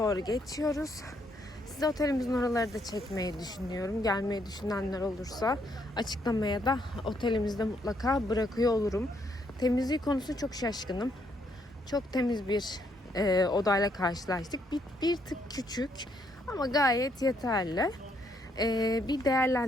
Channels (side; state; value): both; normal; correlation 0.73